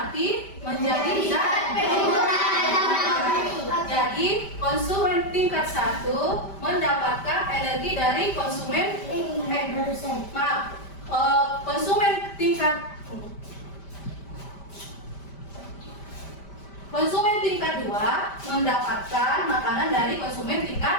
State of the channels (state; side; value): late; right; 5.1 ms